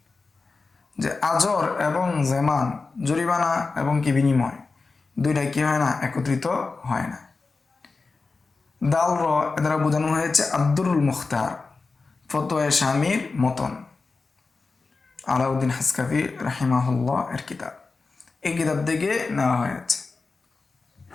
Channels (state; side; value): quieter; right; 4.1 dB